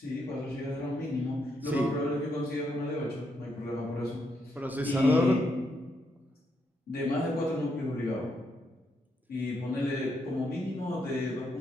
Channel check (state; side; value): normal; both; correlation 0.79